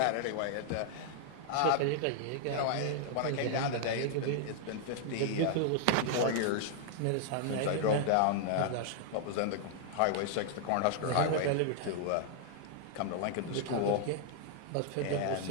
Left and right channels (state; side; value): different; both; correlation -0.01